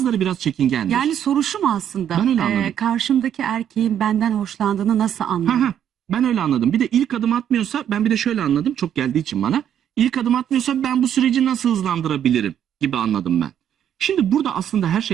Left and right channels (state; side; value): quieter; left; 9.7 dB